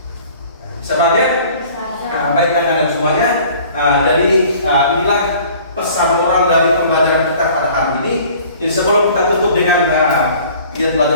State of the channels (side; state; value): both; inverted; correlation -0.50